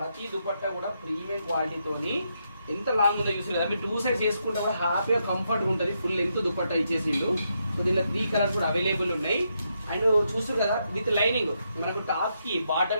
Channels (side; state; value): both; inverted; correlation -0.80